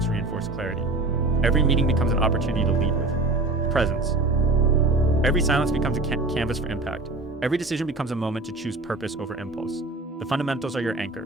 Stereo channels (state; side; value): quieter; left; 3.1 dB